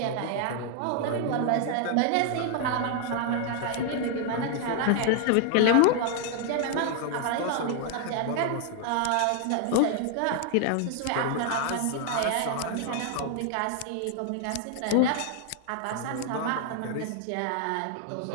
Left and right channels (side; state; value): both; different; correlation 0.00